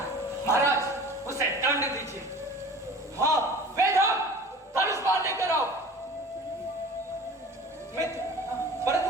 महाराज, उसे दंड दीजिए। हाँ, वेदम, धनुष बाण लेकर आओ। मित्र, परंतु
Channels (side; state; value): both; normal; correlation 0.41